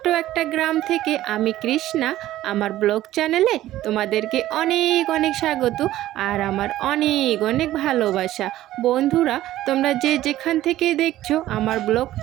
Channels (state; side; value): quieter; left; 14.5 dB